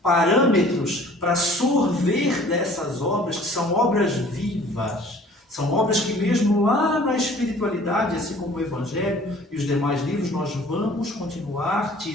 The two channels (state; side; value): normal; both; correlation 0.51